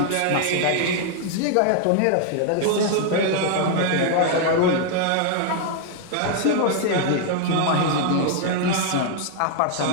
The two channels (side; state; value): both; different; correlation 0.00